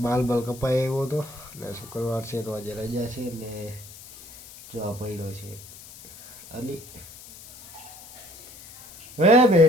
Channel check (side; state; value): left; noise; hiss, 18 dB below the sound